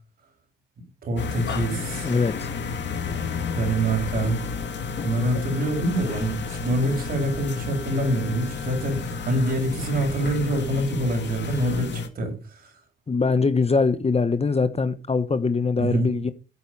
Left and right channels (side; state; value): both; normal; correlation 0.62